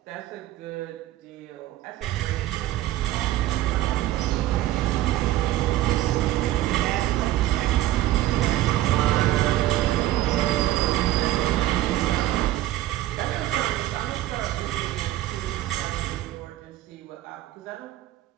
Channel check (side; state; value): left; quieter; 14.8 dB